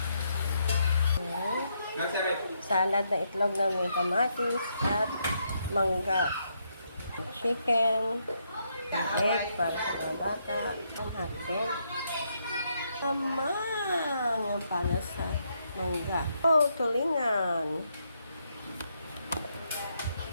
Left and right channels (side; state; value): both; inverted; correlation -0.77